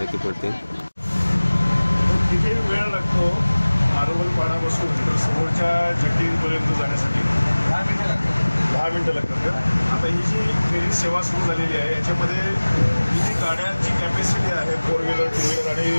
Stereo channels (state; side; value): inverted; both; correlation -1.00